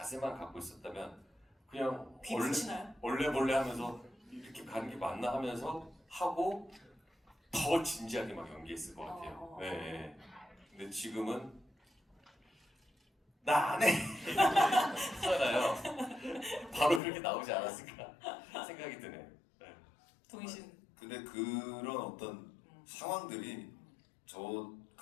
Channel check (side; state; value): right; drops out; at 17.0 s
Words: 갖고 있었다면 그냥 귀 붙이나요? 원래 하면서 이렇게 가는 게 맞나 하면서 하고 더 진지하게 막 연기했을 것 같아요. 네. 근데 지금은 나 안 해! 하잖아요. 바로 그렇게 나오지 않았을까 생각이 드네요. 동희 씨는? 근데 그런 어떤 상황들이